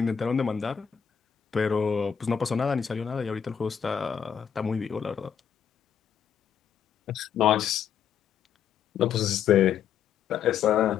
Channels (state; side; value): quieter; right; 8.0 dB